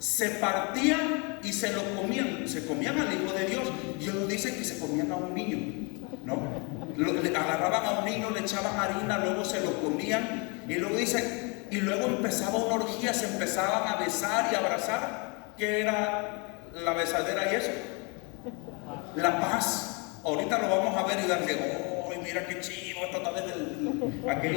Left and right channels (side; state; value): right; quieter; 31.8 dB